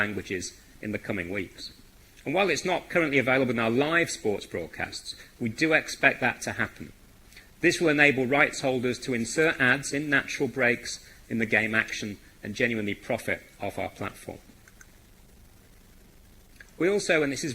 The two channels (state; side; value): identical; both; correlation 1.00